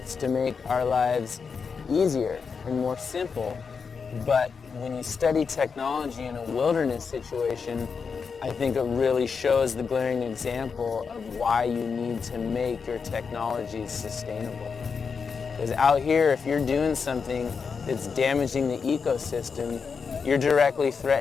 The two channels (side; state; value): right; quieter; 5.6 dB